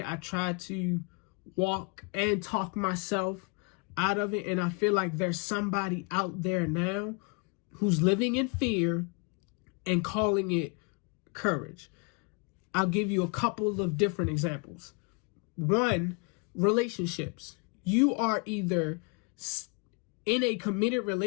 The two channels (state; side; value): quieter; right; 33.0 dB